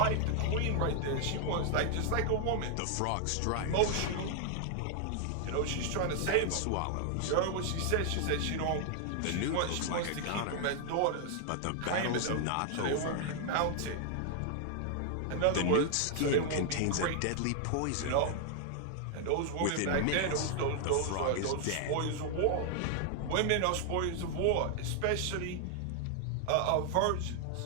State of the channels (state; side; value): different; both; correlation 0.00